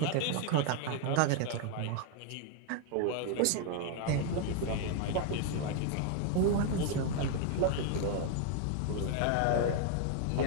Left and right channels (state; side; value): different; both; correlation 0.00